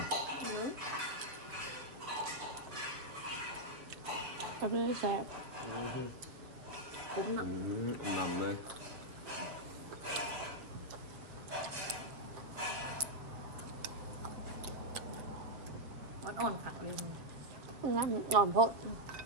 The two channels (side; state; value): left; late; 7.1 ms